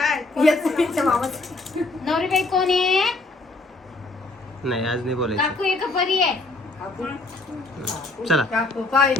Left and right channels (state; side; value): quieter; right; 3.1 dB